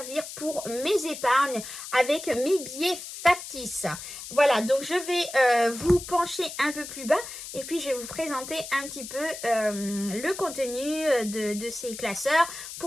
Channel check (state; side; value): noise; left; hiss, 10 dB below the sound